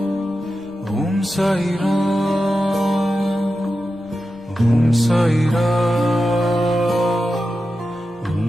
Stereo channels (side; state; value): right; noise; rumble, 26 dB below the sound